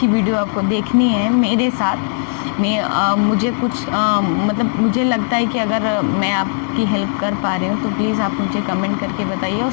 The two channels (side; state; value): right; silent; digital silence